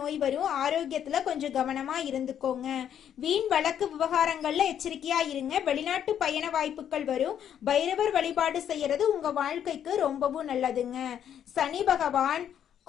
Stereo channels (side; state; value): right; quieter; 9.5 dB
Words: வரும். ஆரோக்கியத்துல கொஞ்சம் கவனமா இருந்துக்கோங்க. வீண் வழக்கு விவகாரங்கள்ல எச்சரிக்கையா இருங்க. வெளிநாட்டு பயண வாய்ப்புகள் வரும். பைரவர் வழிபாடு செய்யறது உங்க வாழ்க்கைக்கு ரொம்பவும் நல்லதுங்க. சனி பகவான்